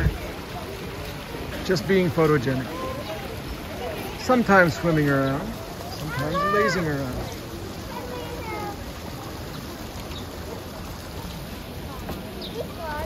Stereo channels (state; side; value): identical; both; correlation 1.00